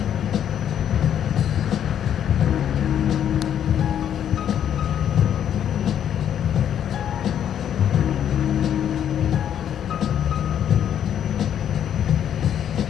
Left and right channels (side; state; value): right; quieter; 9.6 dB